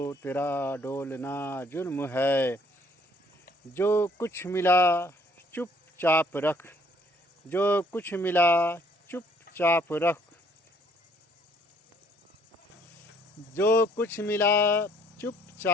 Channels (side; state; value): both; normal; correlation 0.62